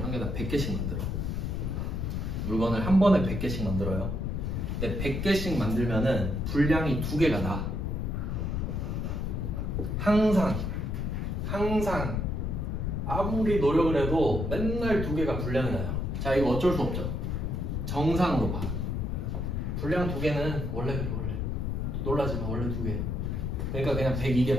한 개당 100개씩 만들어. 물건을 한 번에 100개씩 만들어요. 근데 100개씩 만들면은 분량이 2개가 나. 항상 아무리 노력을 해도 맨날 2개가 분량이 나요. 자, 이거 어쩔 수 없죠. 정상으로 봐. 분량 2개는 원래 그래. 놀라지 마. 원래 2개. 그러니까 그냥 102개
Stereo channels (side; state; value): left; noise; rumble, 1 dB below the sound